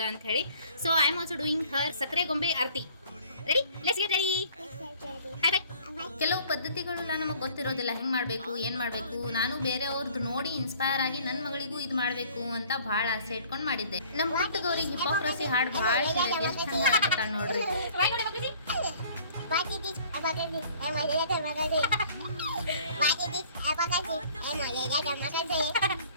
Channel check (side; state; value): both; inverted; correlation -0.53